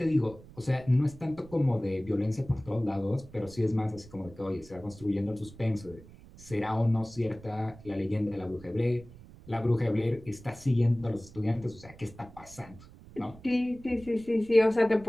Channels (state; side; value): noise; right; rumble, 20 dB below the sound